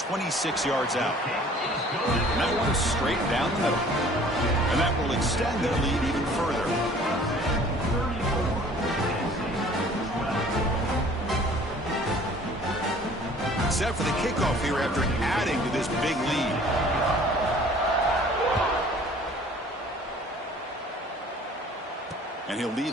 yards out. And that one is straight down the middle. And that will extend their lead even further. Set for the kickoff here after adding to this big lead. And he'll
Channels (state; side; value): normal; both; correlation 0.52